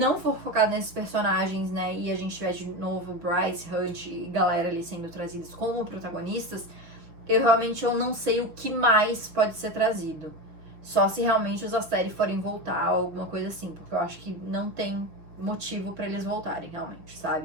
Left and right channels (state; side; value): late; left; 6.5 ms